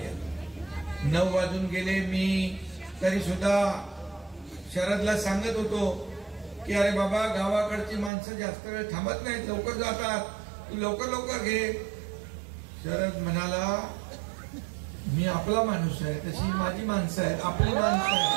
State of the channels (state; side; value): drops out; left; at 8.1 s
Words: 9 वाजून गेले। मी तरी सुद्धा शरदला सांगत होतो की अरे बाबा, गावाकडची माणसं जास्त वेळ थांबत नाहीत, लवकर जातात, तू लवकर लवकर घे। शरद म्हणाला, मी आपला माणूस आहे, तशी माझी माणसं आहेत, आपली माणसं